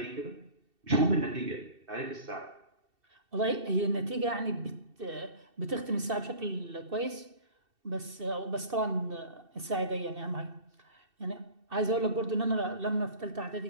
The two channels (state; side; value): late; left; 2.7 ms